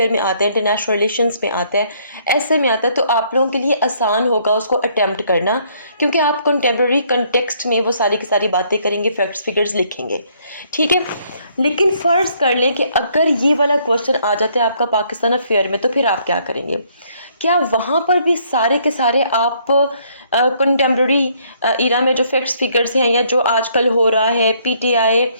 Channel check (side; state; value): both; inverted; correlation -0.66